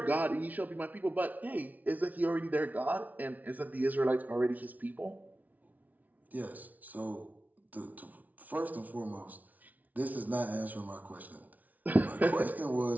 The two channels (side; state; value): left; late; 0.075 ms